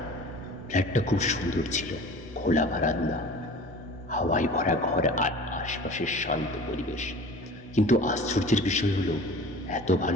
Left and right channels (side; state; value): both; normal; correlation 0.41